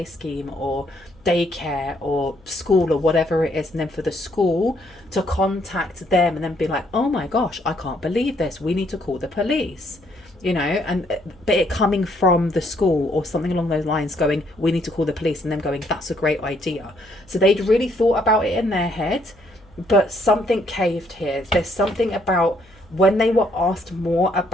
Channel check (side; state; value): left; noise; hum, 28 dB below the sound